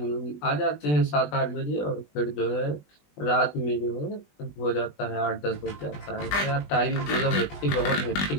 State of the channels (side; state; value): right; late; 20 ms